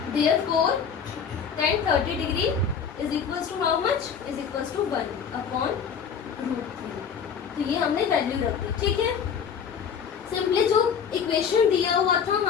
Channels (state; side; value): quieter; right; 6.9 dB